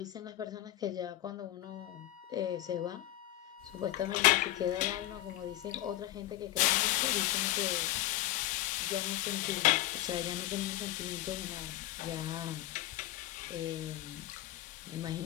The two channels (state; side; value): quieter; right; 15.1 dB